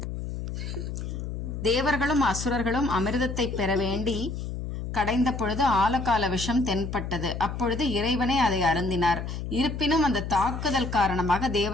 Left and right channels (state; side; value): noise; left; hum, 6 dB below the sound